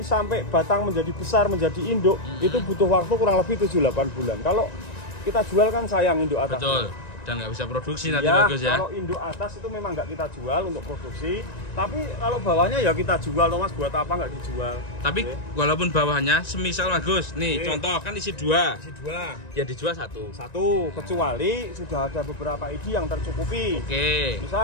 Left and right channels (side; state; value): right; late; 1.9 ms